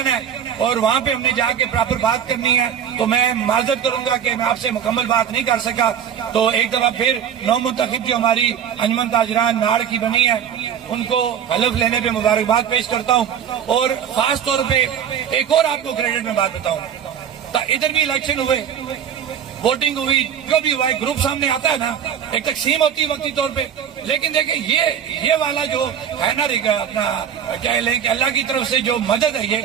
ہے اور وہاں پہ ہم نے جا کے پراپر بات کرنی ہے، تو میں معذرت کروں گا کہ میں آپ سے مکمل بات نہیں کر سکا۔ تو ایک دفعہ پھر نو منتخب جو ہماری انجمن تاجران ناڑ کی بنی ہے ان کو حلف لینے پہ مبارکباد پیش کرتا ہوں، اور خاص طور پہ ایک اور آپ کو کریڈٹ میں بات بتاؤں، ادھر بھی الیکشن ہوئے، ووٹنگ ہوئی، جو بھی ہوا ہے، گروپ سامنے آتا ہے نا، ایک تقسیم ہوتی ہے وقتی طور پہ، لیکن دیکھیں یہ والا جو ہے نا اپنا کیا لیں کہ اللہ کی طرف سے جو مدد ہے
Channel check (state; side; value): quieter; left; 8.6 dB